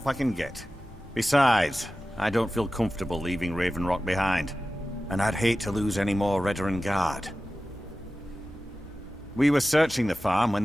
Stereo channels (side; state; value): both; normal; correlation 0.95